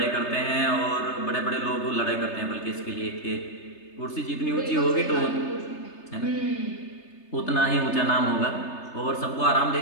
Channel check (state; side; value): late; right; 3.3 ms